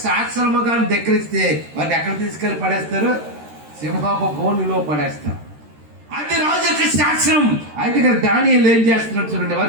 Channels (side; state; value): left; late; 13 ms